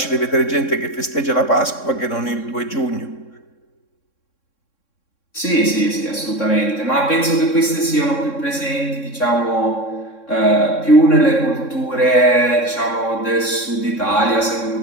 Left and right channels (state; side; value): late; right; 3.6 ms